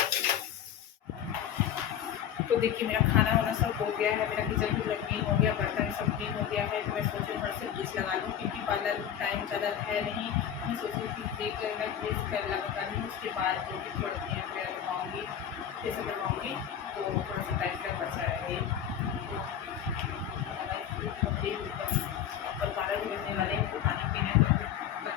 तो देखिए मेरा खाना वाना सब हो गया है, मेरा किचन भी क्लीन हो गया, बर्तन सब क्लीन हो गया है, तो मैं सोची थोड़ा सा ब्लीच लगा लूँ, क्योंकि पार्लर टाइम ज़्यादा है नहीं, मैं सोची कि देख मैं ब्लीच कर लगा लूँ, उसके बाद जो भी थोड़ा क्लीन वगैरह करवाऊँगी जैसे करवाऊँगी, तो थोड़ा सा टाइम का बचा रहे। और 12 भी बजने वाले हैं, तो पानी पीना तो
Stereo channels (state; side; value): quieter; right; 9.6 dB